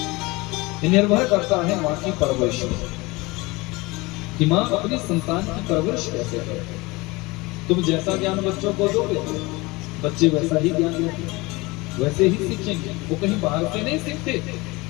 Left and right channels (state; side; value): quieter; right; 23.4 dB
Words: ये निर्भर करता है माँ की परवरिश कि माँ अपनी संतान की परवरिश कैसे करे। तुम जैसा ज्ञान बच्चों को दोगे बच्चे वैसा ही ज्ञान लेंगे, वैसे ही सीखेंगे। वो कहीं बाहर से नहीं सीखते,